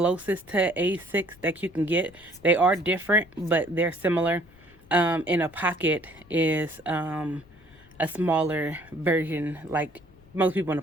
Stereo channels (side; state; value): left; noise; rumble, 27 dB below the sound